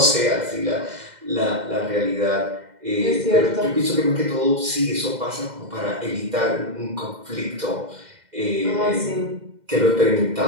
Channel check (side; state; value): left; late; 2.1 ms